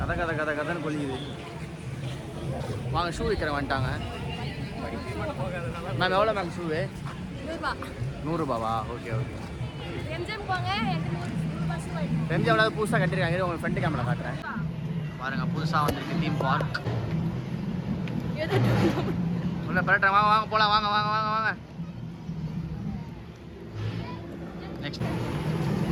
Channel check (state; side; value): identical; both; correlation 1.00